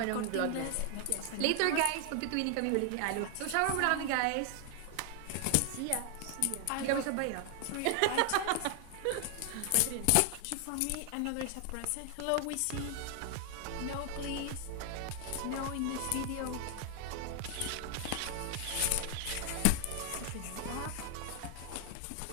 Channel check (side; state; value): both; different; correlation 0.00